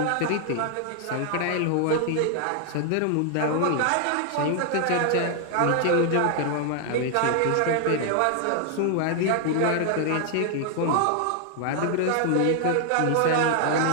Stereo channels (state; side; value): different; both; correlation 0.00